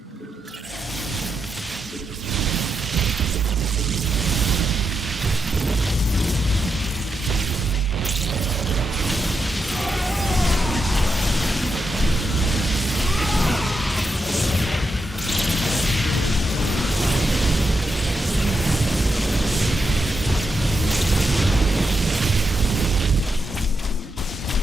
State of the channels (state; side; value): normal; both; correlation 0.84